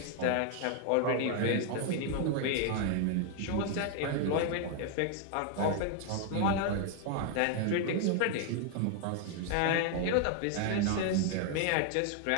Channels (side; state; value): both; different; correlation 0.00